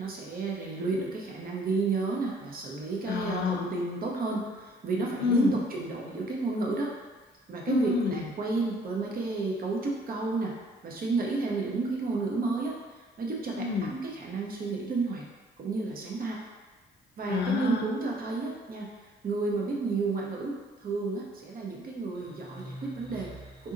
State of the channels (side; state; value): both; normal; correlation 0.60